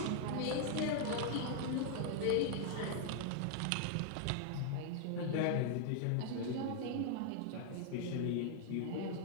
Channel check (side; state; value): both; different; correlation -0.01